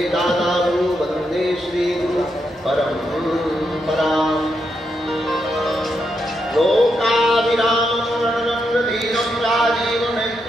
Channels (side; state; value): both; normal; correlation 0.82